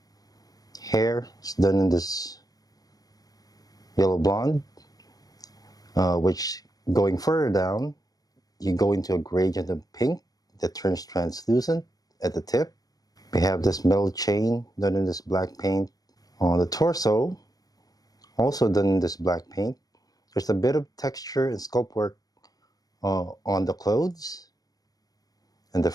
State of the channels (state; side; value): late; right; 0.18 ms